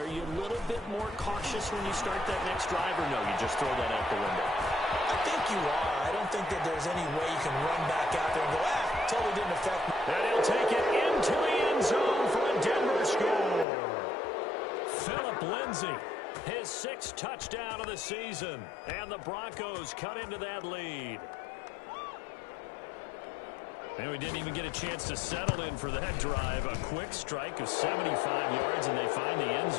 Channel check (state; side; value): drops out; right; at 13.7 s